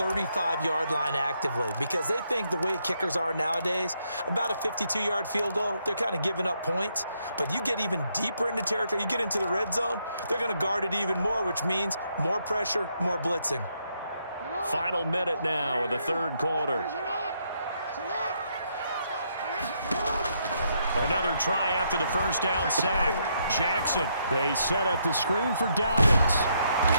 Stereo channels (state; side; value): inverted; both; correlation -0.75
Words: line actively because they think the way kickers are nowadays, about a 52-yard field goal, they're kind of giving up points. But you get even deeper into territory, you get into the red zone, they're going to guard it even more, which means more pressure, more blitzing. Final minute now of the third quarter. Another try after the first down sack. Jackson, they set up the screen for Dobbins.